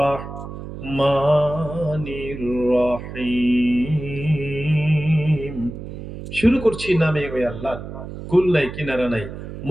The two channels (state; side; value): noise; right; hum, 10 dB below the sound